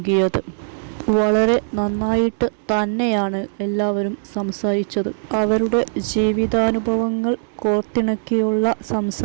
വളരെ നന്നായിട്ട് തന്നെയാണ് എല്ലാവരും സംസാരിച്ചത്. അവരുടെ ജീവിതാനുഭവങ്ങൾ കോർത്തിണക്കിയുള്ള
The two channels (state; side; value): silent; left; digital silence